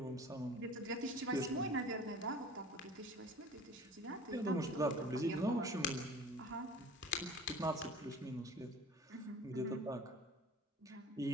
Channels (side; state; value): both; normal; correlation 0.44